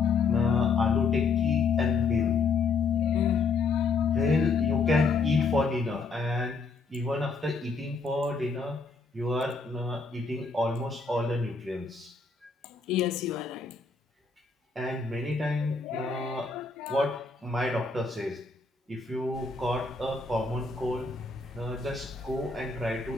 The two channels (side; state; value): right; quieter; 4.4 dB